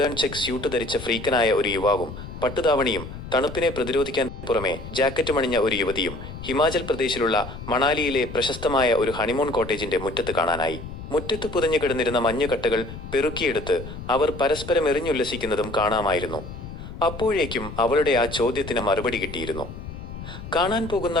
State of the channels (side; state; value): left; noise; rumble, 11 dB below the sound